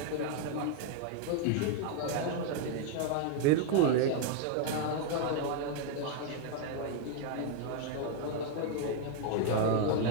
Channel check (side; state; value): both; different; correlation 0.00